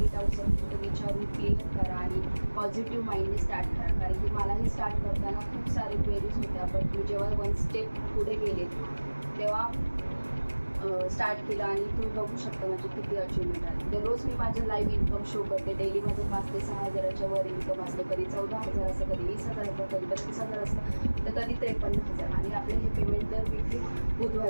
डाऊट्स असेल तर विचारून क्लिअर करा आणि पॉझिटिव्ह माइंडने स्टार्ट करा. कारण की मलाही स्टार्ट करताना खूप सारे क्वेरीज होत्या, बट मी जेव्हा 1 स्टेप पुढे गेले तेव्हा स्टार्ट केलं आणि तुम्ही बघू शकता म्हणजे किती अचिव्हमेंट आहे. दररोज मी माझं लाईव्ह इन्कम शो करते. डेली माझं 5 ते 6 हजाराच्या वर इन्कम असतं. कधी 14,000 असतं, कधी 20,000 असतं, कधी 32,000 असतं, तर कधी 53,000. आणि आपले हे पेमेंट दर वीकली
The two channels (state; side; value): inverted; both; correlation -1.00